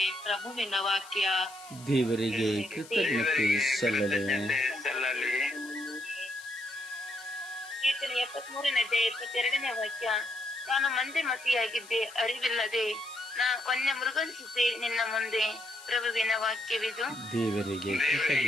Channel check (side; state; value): left; noise; hiss, 19 dB below the sound